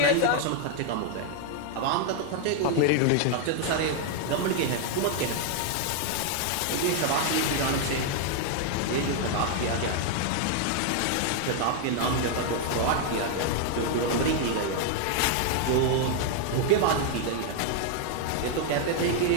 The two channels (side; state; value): both; different; correlation 0.00